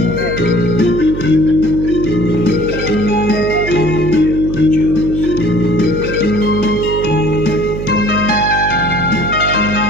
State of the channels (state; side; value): noise; right; hum, 7 dB below the sound